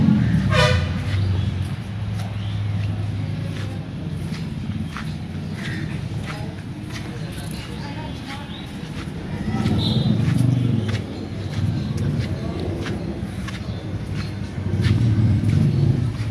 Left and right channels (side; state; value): both; identical; correlation 1.00